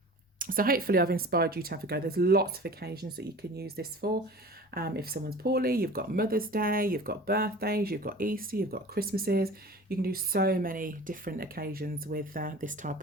So hopefully I've inspired you to have a go. There's lots of occasions that you can use this for. If someone's poorly, you've got Mother's Day, you've got birthdays, you've got Easter, you've got Christmases. You can do so many different occasions with this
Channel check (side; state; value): both; normal; correlation 0.40